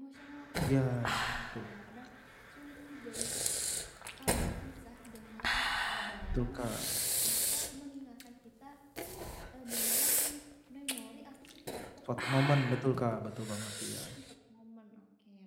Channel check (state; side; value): identical; both; correlation 1.00